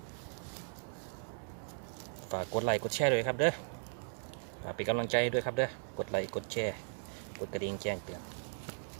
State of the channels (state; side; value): silent; left; digital silence